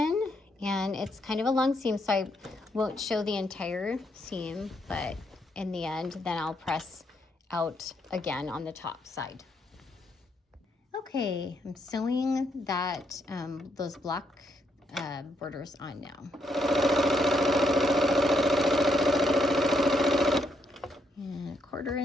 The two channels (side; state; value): both; normal; correlation 0.76